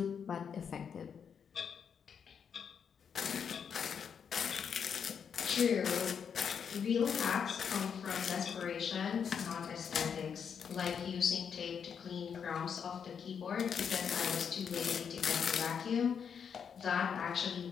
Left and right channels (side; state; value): right; quieter; 7.2 dB